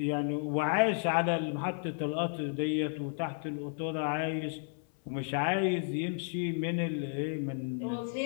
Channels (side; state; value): right; silent; 56 dB below the other